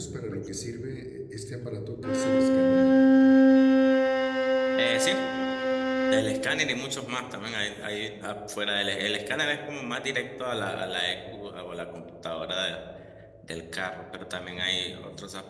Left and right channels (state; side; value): identical; both; correlation 1.00